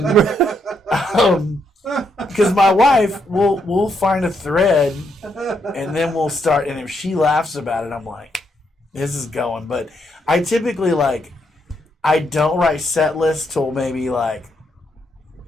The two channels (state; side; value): normal; both; correlation 0.77